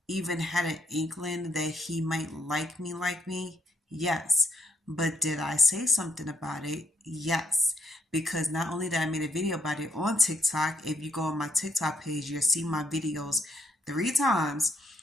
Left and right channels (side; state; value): both; normal; correlation 0.74